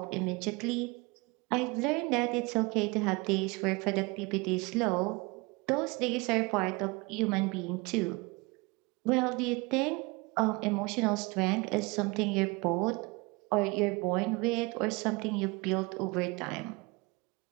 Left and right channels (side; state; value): left; quieter; 26.2 dB